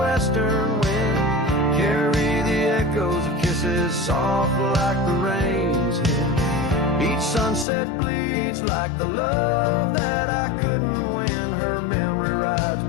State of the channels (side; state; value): right; drops out; at 7.7 s